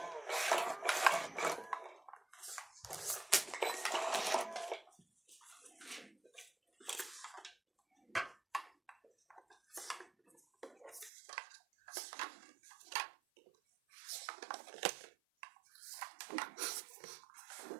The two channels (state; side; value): drops out; left; at 11.1 s